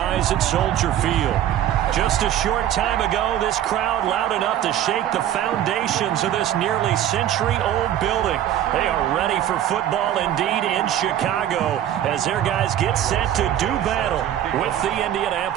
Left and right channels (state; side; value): quieter; left; 11.4 dB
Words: at Soldier Field. Just a short time ago, this crowd loud enough to shake the foundations of this nearly century-old building. They are ready for football indeed in Chicago as their guys get set to do battle with the